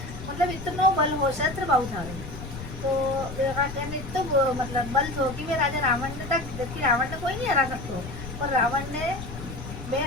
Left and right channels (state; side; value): noise; left; rumble, 10 dB below the sound